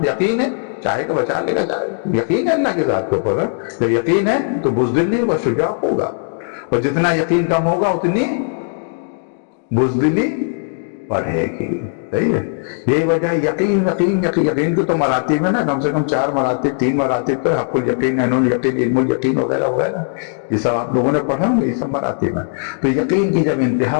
یقین ہے چاہے گا بچا لے گا، چاہے یقین ہے اللہ کے ذات کے اوپر. جب یقین ہے تو بزدل نہیں ہوگا، شجاع ہوگا. اور جتنا یقین کم ہوگا اتنی بزدلی بڑھے گی. صحیح ہے. یہی وجہ ہے یقین کی تو مراتب ہے نا، کم سے کم 4 مراتب، 3 مراتب تو حق الیقین، عین الیقین، علم الیقین وغیرہ وغیرہ. یہ سب آپ لوگوں نے پڑھا، یہ سب مراتب ہیں. تو یقین کی جب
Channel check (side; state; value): right; silent; digital silence